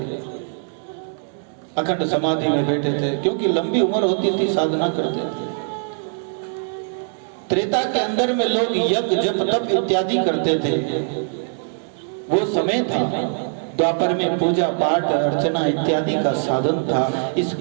अखंड समाधि में बैठे थे, क्योंकि लंबी उम्र होती थी, साधना करते थे। त्रेता के अंदर में लोग यज्ञ, जप, तप इत्यादि करते थे, वो समय था। द्वापर में पूजा पाठ, अर्चना इत्यादि का साधन था। इस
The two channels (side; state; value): left; silent; digital silence